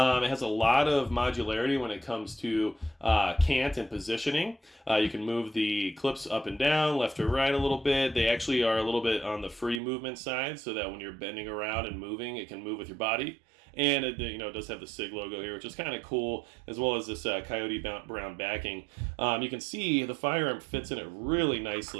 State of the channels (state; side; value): drops out; left; at 9.8 s